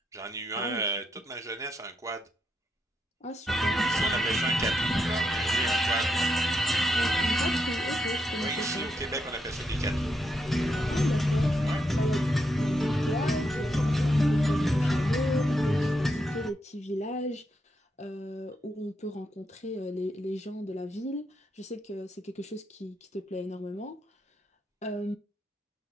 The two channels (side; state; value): both; normal; correlation 0.81